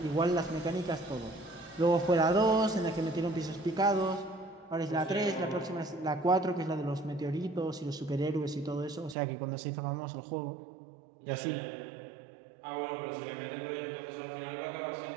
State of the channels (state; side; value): drops out; left; at 9.2 s